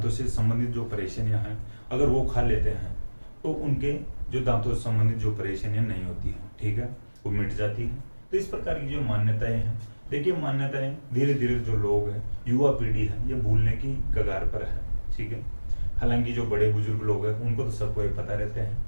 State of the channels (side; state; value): both; inverted; correlation -1.00